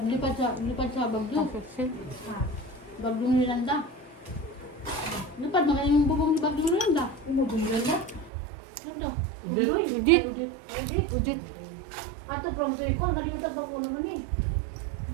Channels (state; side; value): drops out; left; at 8.3 s